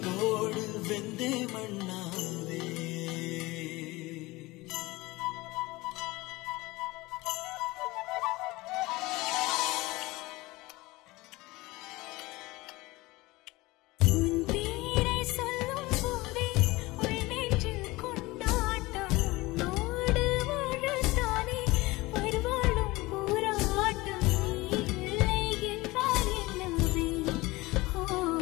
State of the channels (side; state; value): right; quieter; 21.1 dB